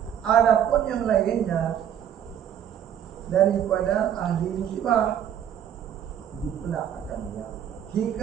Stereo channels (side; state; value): left; quieter; 9.6 dB